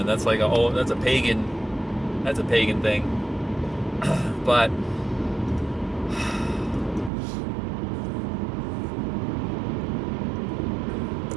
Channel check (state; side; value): drops out; left; at 7.1 s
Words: That's like that's a pagan thing. But